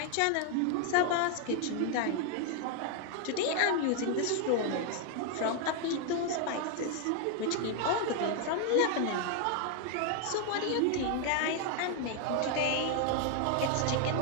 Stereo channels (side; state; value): both; different; correlation 0.00